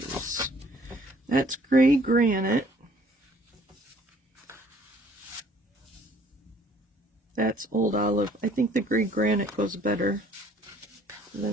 That's gray granite. That's old olive. I think the gray granite goes better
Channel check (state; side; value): normal; both; correlation 0.59